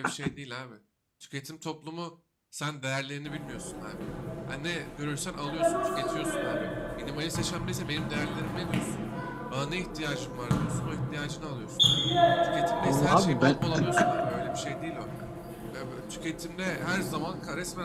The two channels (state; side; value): identical; both; correlation 1.00